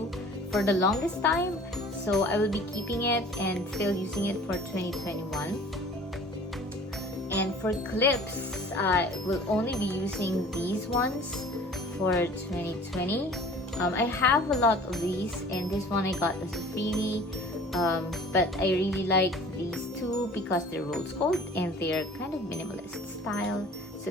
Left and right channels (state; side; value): normal; both; correlation 0.47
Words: for the longest time. So I will be keeping it and still using it for 2021. And for clips, I will only be using these ones for 2020. I have a lot of these, and this one I got as a freebie. But I really like these two because they're rose gold and they're kind of minimalist style. So